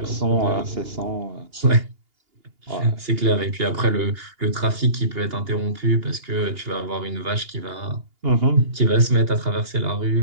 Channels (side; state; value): left; late; 2.8 ms